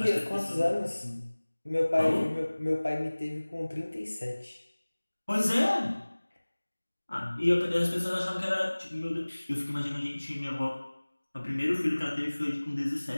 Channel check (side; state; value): both; inverted; correlation -1.00